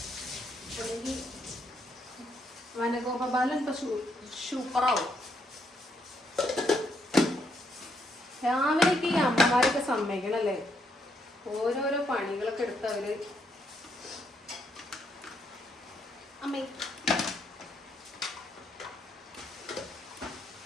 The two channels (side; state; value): both; normal; correlation 0.75